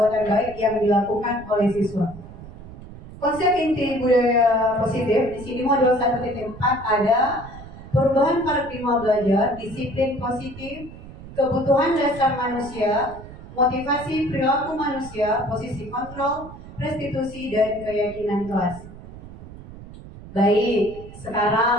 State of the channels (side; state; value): right; noise; rumble, 16 dB below the sound